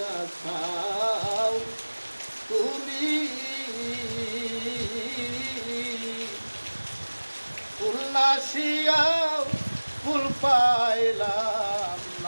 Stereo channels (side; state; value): both; inverted; correlation -1.00